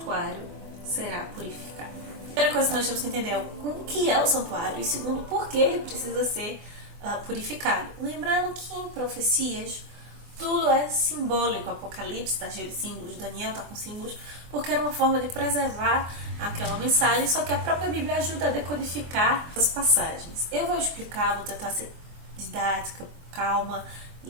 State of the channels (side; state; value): left; late; 24 ms